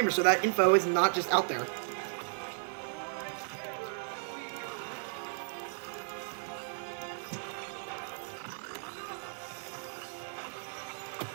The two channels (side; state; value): left; silent; digital silence